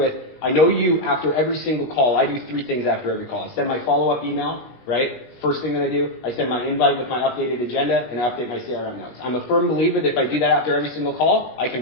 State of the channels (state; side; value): late; right; 19 ms